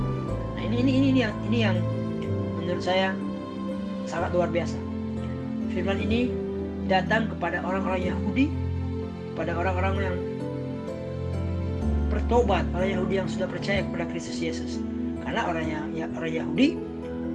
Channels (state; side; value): identical; both; correlation 1.00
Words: Nah, ini yang menurut saya sangat luar biasa. Firman ini datang kepada orang-orang Yahudi, kepada orang-orang yang bertobat, orang Yahudi yang sudah percaya kepada Kristus Yesus. Karena orang Yahudi